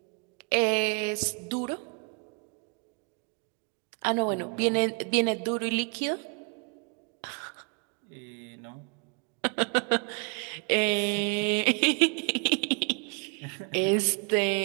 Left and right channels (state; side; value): quieter; left; 37.0 dB